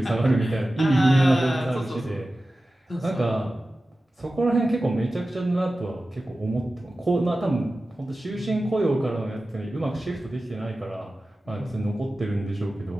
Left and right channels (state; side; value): normal; both; correlation 0.95